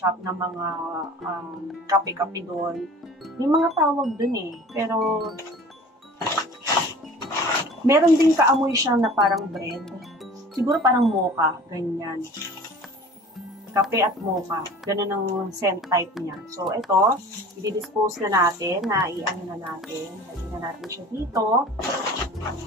ng mga kape-kape doon. May mga tawag doon eh. Pero, meron din kaamoy siya na parang bread. Siguro parang mocha, ganyan. Kape at mocha. Ganun ang scent type niya. So, ito, i-dispose na natin, i-ano na natin. Lagyan na natin siya dito.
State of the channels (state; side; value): normal; both; correlation 0.43